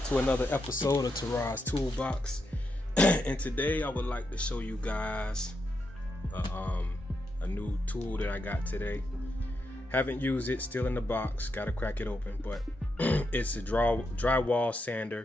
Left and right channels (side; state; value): both; normal; correlation 0.83